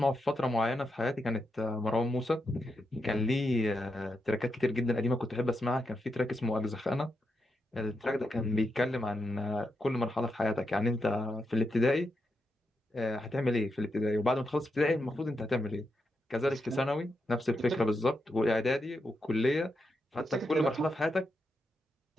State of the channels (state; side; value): normal; both; correlation 0.85